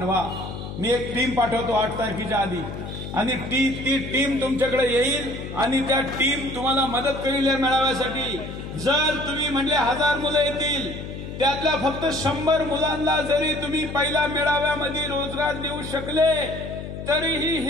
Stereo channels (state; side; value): noise; left; hum, 9 dB below the sound